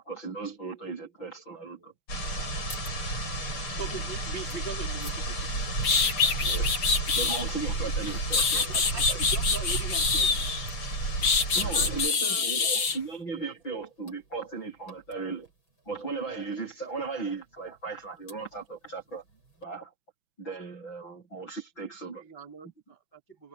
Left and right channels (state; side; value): late; right; 6.0 ms